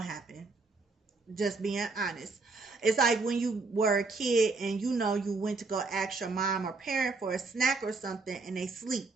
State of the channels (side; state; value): left; quieter; 3.8 dB